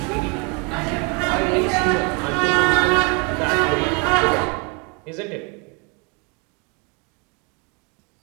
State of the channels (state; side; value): quieter; left; 30.9 dB